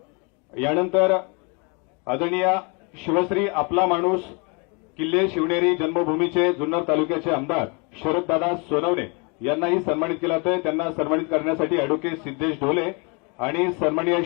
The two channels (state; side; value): quieter; right; 31.6 dB